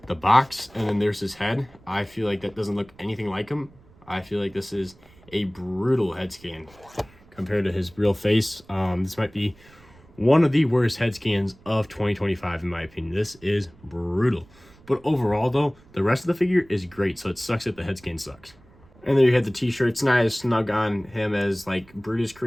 the box, and then there's his head. I feel like that doesn't look anything like him. I feel like this is a brutal head scan compared to his real face. This might be one of the worst head scans of 2025 in my opinion. This is brutal. But overall though, the rest of the figure is great, so it sucks that the head scan sucks. And there you have the t-shirt. It's not as snug on him as like Brutus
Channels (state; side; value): noise; right; rumble, 26 dB below the sound